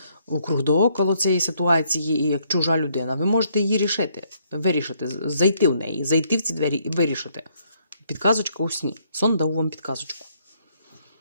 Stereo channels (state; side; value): inverted; both; correlation -0.70